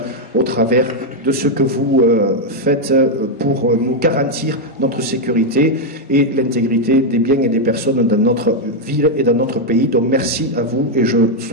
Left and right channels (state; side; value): normal; both; correlation 0.01